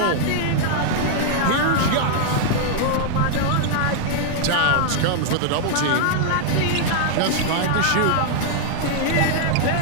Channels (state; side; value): different; both; correlation -0.01